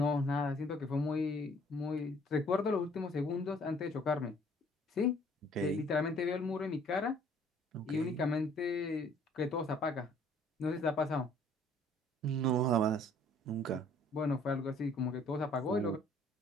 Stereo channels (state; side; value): normal; both; correlation 0.58